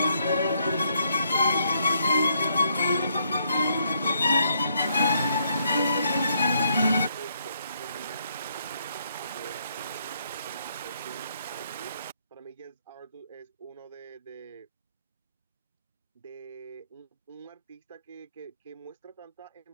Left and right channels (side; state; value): both; inverted; correlation -0.73